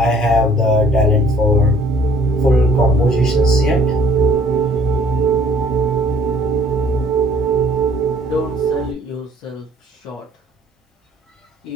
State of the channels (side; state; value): both; normal; correlation 0.58